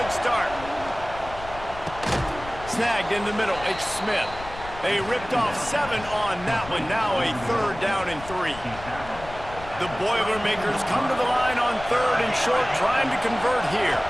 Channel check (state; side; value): noise; left; rumble, 14 dB below the sound